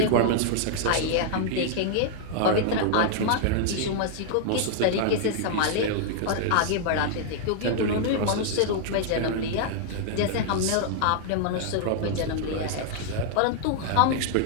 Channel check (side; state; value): both; different; correlation -0.01